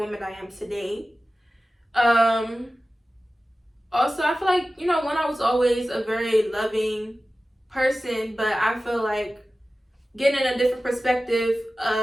I am today. Also, I feel like, when I was always a very loving person, but I feel like getting a different perspective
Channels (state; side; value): normal; both; correlation 0.95